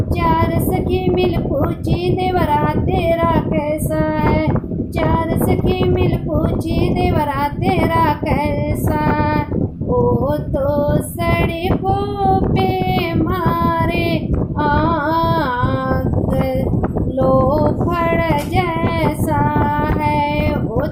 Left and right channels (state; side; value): identical; both; correlation 1.00